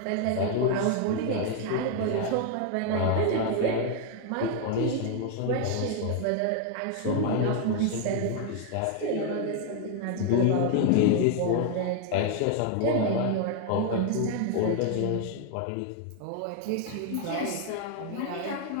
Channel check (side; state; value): both; different; correlation 0.00